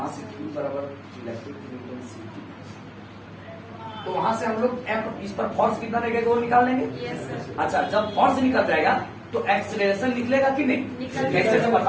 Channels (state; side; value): identical; both; correlation 1.00